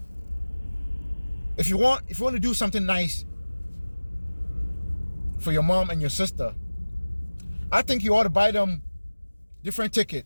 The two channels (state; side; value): inverted; both; correlation -1.00